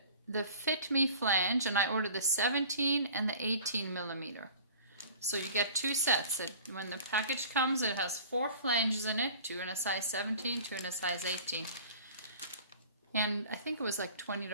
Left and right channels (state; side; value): inverted; both; correlation -0.45